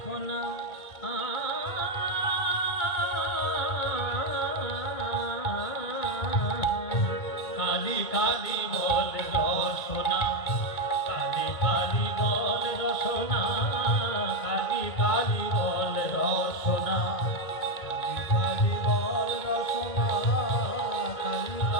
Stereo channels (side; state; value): right; late; 2.1 ms